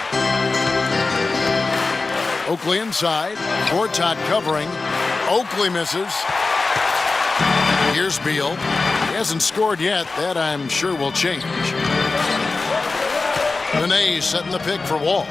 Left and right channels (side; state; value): right; quieter; 3.8 dB